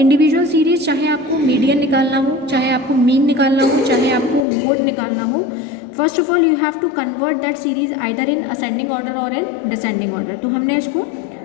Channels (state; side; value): drops out; right; at 4.5 s